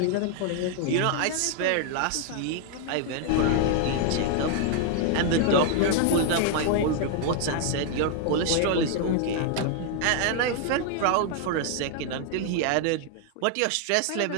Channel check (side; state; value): both; different; correlation 0.00